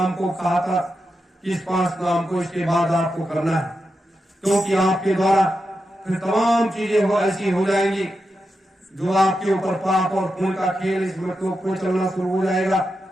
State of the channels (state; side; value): normal; both; correlation 0.88